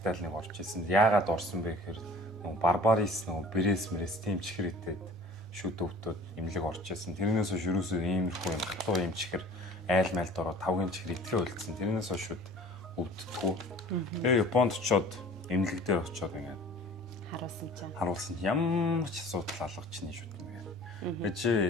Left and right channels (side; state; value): both; normal; correlation 0.46